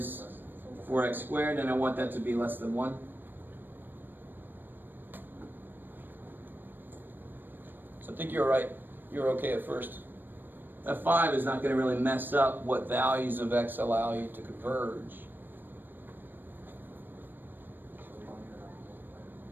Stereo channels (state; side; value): late; left; 0.093 ms